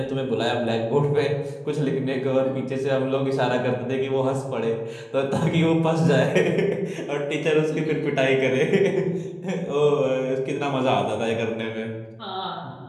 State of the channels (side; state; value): both; identical; correlation 1.00